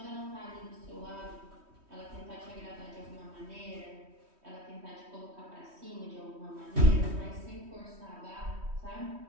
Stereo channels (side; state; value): left; late; 3.1 ms